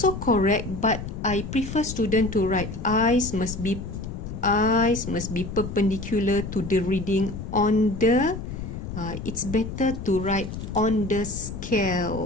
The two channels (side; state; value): left; noise; rumble, 8 dB below the sound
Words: correct, but I prefer student to write eyes must be perpendicular to the reading on the it's better to write on the